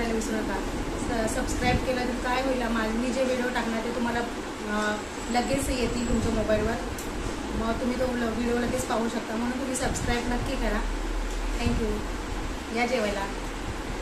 विसरू नका. सबस्क्राईब केलं तर काय होईल, मी जे व्हिडिओ टाकणार ते तुम्हाला लगेच येतील तुमच्या मोबाईलवर. मग तुम्ही तो व्हिडिओ लगेच पाहू शकता. म्हणून तुम्ही सबस्क्राईब नक्की करा. थँक्यू. या जेवायला.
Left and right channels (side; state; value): both; identical; correlation 1.00